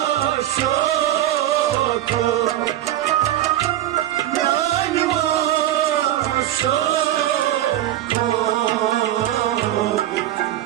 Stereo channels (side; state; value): left; quieter; 13.1 dB